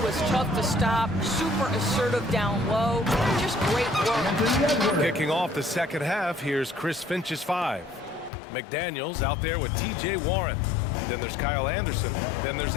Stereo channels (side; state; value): right; drops out; at 8.3 s